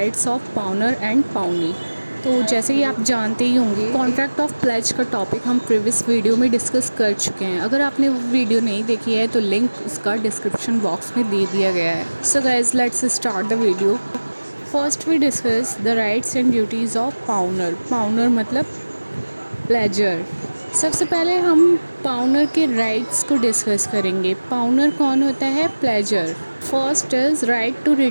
of pawner and pawnee. तो जैसे कि आप जानते ही होंगे contract of pledge का topic हम previous video में discuss कर चुके हैं। अगर आपने वो वीडियो नहीं देखी है तो लिंक उसका डिस्क्रिप्शन बॉक्स में दे दिया गया है। So guys let's start the video. First we discuss the rights and duties of pawnor. Pawnor मतलब प्लेजर। सबसे पहले हम पाउनर के राइट्स को डिस्कस करेंगे। पाउनर कौन होता है? Pledgor. First is right to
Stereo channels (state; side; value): inverted; both; correlation -1.00